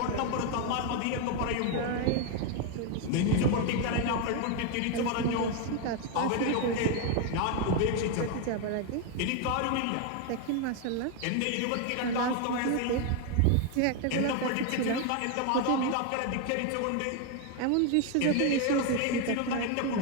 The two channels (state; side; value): different; both; correlation 0.01